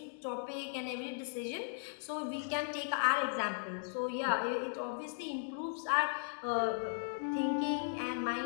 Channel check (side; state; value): right; silent; digital silence